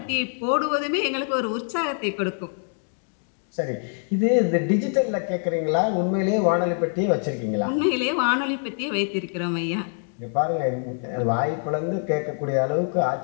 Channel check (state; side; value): silent; right; 62 dB below the other